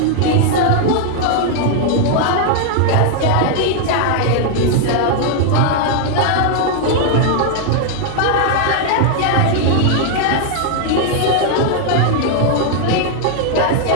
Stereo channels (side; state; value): both; different; correlation 0.00